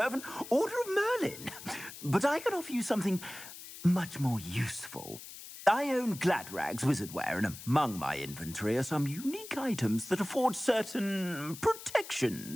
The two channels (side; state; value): left; noise; hiss, 14 dB below the sound